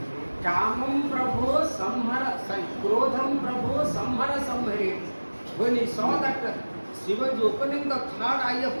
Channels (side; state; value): both; inverted; correlation -1.00